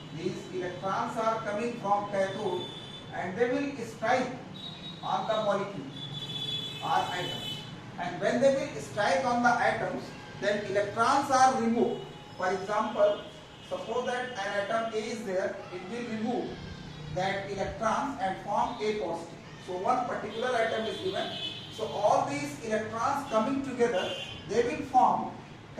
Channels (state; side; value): identical; both; correlation 1.00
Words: These electrons are coming from cathode and they will strike on the molecule or atoms. And when they will strike on the atoms, then electrons are removed. For example, suppose that an atom A is there, it will remove that electrons and form A positive. So one particular atom is given. So all these electrons coming together, they will form